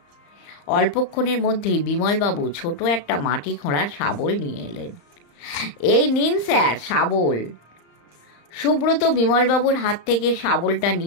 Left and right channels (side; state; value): right; late; 34 ms